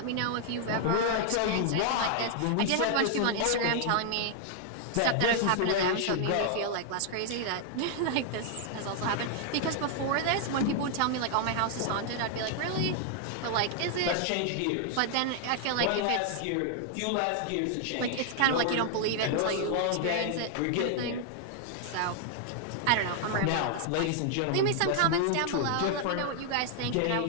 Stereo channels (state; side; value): different; both; correlation 0.00